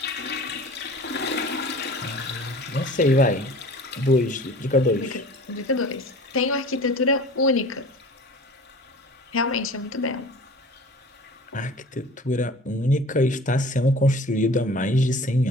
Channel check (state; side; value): normal; both; correlation 0.42